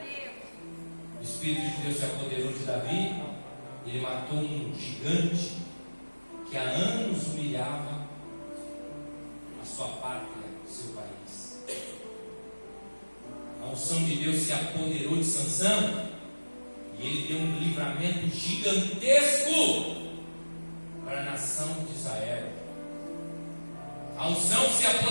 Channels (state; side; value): inverted; both; correlation -1.00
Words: Deus. O Espírito de Deus se apoderou de Davi. Ele matou um gigante que há anos humilhava a sua pátria, o seu país. A unção de Deus se apoderou de Sansão e ele deu um livramento gigantesco para a nação de Israel. A unção se